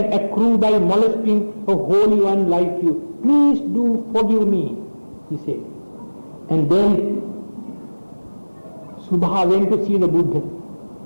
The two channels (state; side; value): inverted; both; correlation -1.00